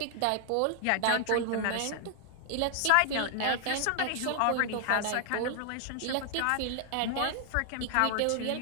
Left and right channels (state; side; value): different; both; correlation 0.00